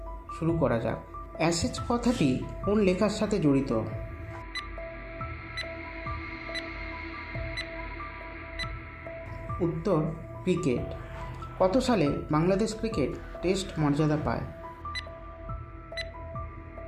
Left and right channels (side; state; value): both; identical; correlation 1.00